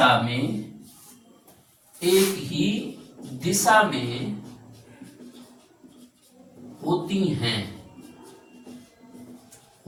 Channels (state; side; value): identical; both; correlation 1.00